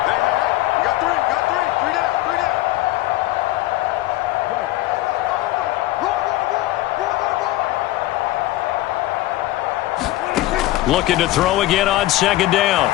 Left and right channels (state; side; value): quieter; right; 16.5 dB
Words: Looking to throw again on second down.